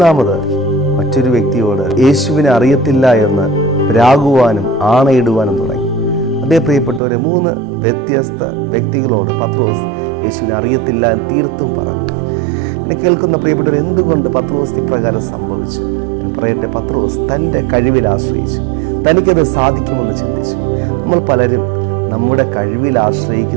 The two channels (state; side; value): drops out; left; at 7.0 s